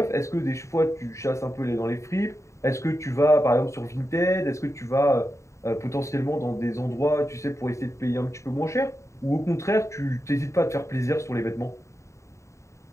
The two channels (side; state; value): right; late; 0.14 ms